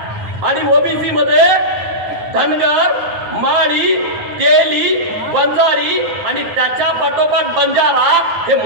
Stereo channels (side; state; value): left; late; 9.4 ms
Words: आणि ओबीसी मध्ये धनगर, माळी, तेली, वंजारी आणि त्याच्या पाठोपाठ बंजारा हे